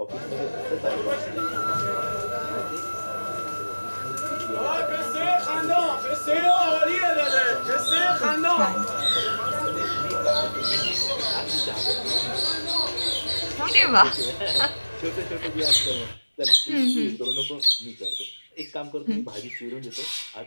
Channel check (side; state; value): both; inverted; correlation -1.00